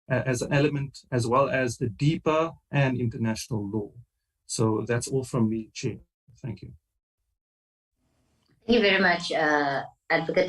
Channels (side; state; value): both; identical; correlation 1.00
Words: as an element, as well as the DIPA and international law. So that's all from me, Chair. Thank you. Thank you very much,